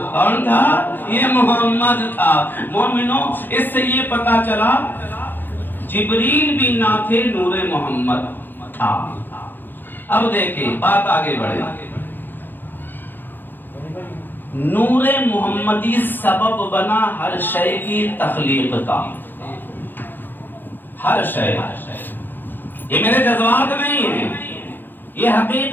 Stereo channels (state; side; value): late; right; 0.093 ms